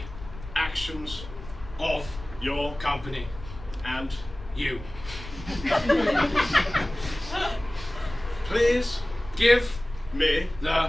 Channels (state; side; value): noise; left; rumble, 14 dB below the sound